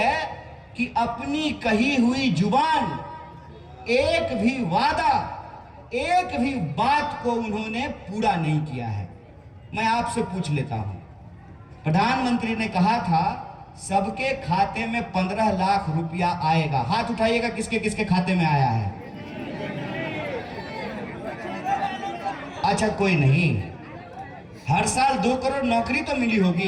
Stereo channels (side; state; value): both; identical; correlation 1.00